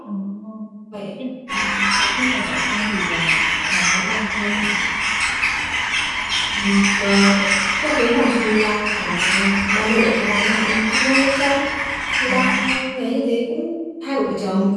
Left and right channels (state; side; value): identical; both; correlation 1.00